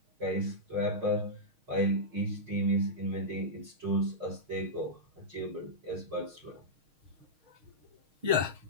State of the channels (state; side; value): late; left; 6.4 ms